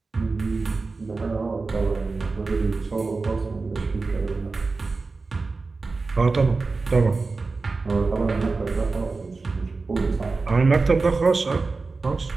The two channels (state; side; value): quieter; left; 3.9 dB